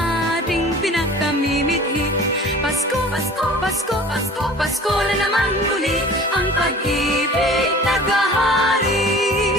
ating pinakamimithi. Pasko, Pasko, Pasko, Pasko, Pasko na naman muli. Ang pag-ibig naghahari.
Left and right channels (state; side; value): normal; both; correlation 0.44